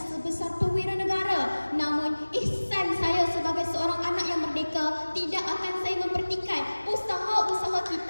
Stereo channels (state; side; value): inverted; both; correlation -1.00